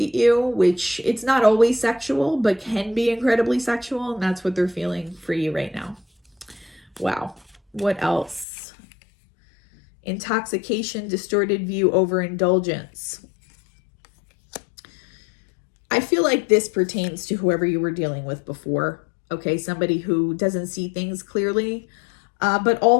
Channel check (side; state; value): right; drops out; at 8.5 s